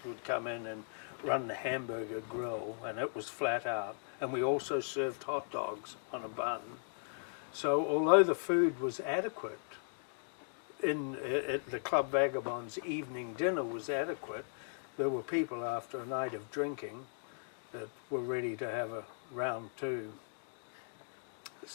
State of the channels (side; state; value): right; silent; digital silence